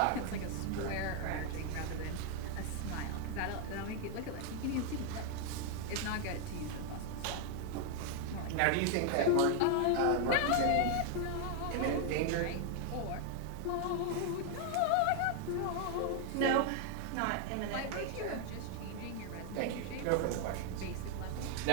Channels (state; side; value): different; both; correlation 0.00